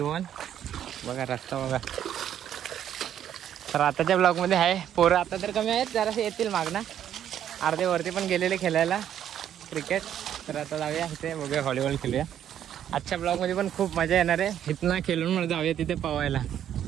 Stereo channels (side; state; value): left; quieter; 10.2 dB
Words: बघा रस्ता बघा. तर आताच्या ब्लॉगमध्ये आहे पोरं आता तर कमी आहेत, जरासे येतील मागणं. अर्धे वरती पण गेलेले खेळायला क्रिकेट. तर आता जाऊया इथे बघूया व्हॉलीबॉल खेळूया. आजच्या ब्लॉगमध्ये पण खूप मजा येणार आहे. इथनं खेळून मला जाऊया तिथे पवायला.